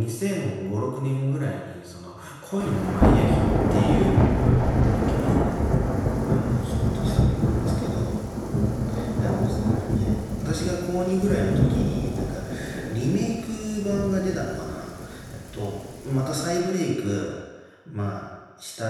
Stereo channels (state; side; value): identical; both; correlation 1.00